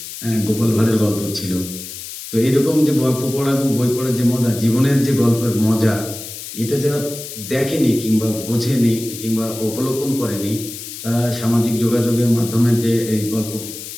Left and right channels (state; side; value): noise; left; hiss, 11 dB below the sound